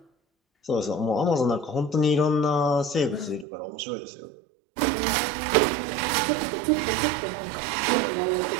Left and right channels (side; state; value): left; drops out; at 3.5 s